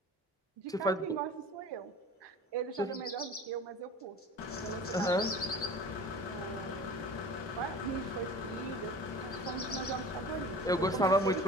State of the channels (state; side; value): normal; both; correlation 0.39